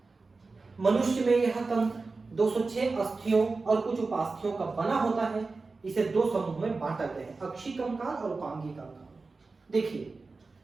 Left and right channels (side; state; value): left; quieter; 3.9 dB